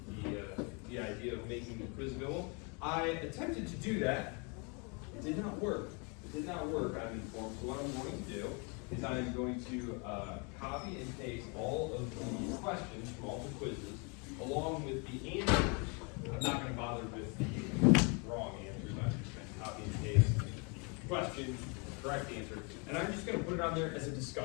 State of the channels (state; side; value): quieter; right; 33.3 dB